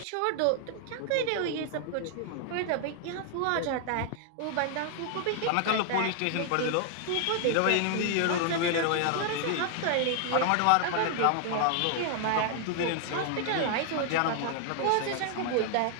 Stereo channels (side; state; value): both; different; correlation 0.00